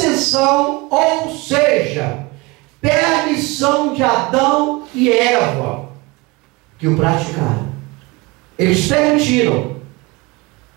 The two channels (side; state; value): left; quieter; 24.5 dB